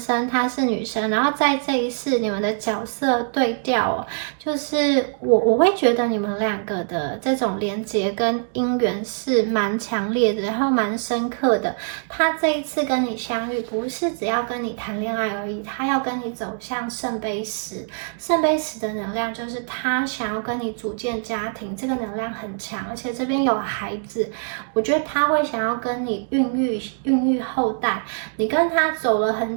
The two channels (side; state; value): left; silent; digital silence